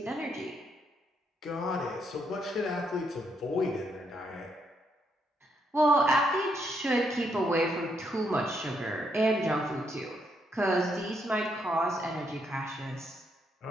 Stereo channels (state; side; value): normal; both; correlation 0.76